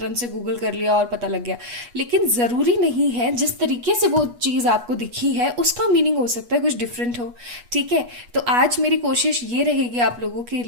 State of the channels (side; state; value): left; late; 8.3 ms